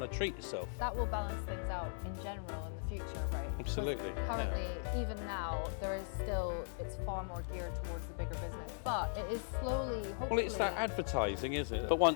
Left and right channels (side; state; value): right; silent; digital silence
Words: to treat yourself. That will balance things out in general in the future, right? Absolutely. Currently, even now, there is still, it's far more geared towards the bigger business, but it is slowly, hopefully... Well, it's that advertising, isn't it? But